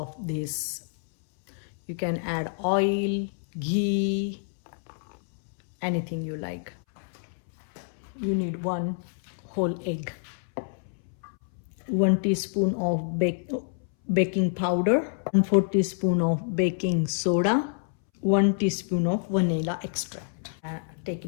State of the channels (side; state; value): right; silent; 60 dB below the other